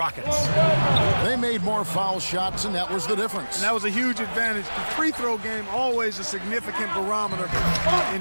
They made more foul shots, and that was the difference. And that was a huge advantage. The free throw game always a significant barometer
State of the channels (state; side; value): inverted; both; correlation -1.00